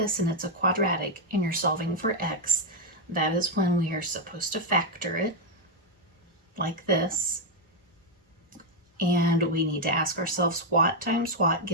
and it's a quadratic and you're solving for x, that is when we are supposed to factor it like this. And we need to ask ourselves, what times what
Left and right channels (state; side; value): normal; both; correlation 0.02